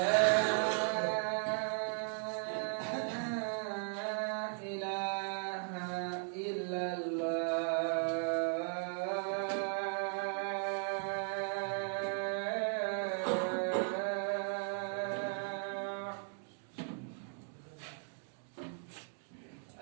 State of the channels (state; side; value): silent; left; 53 dB below the other